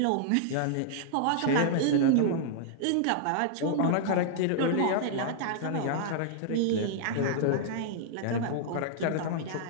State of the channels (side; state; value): both; different; correlation -0.01